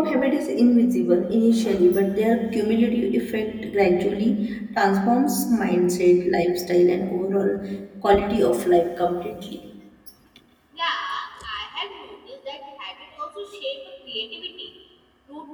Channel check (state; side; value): identical; both; correlation 1.00